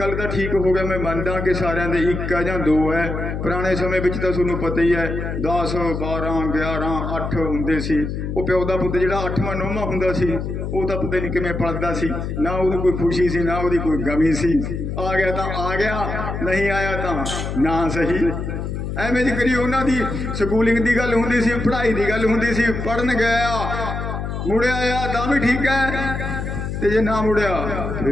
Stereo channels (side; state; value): left; noise; hum, 4 dB below the sound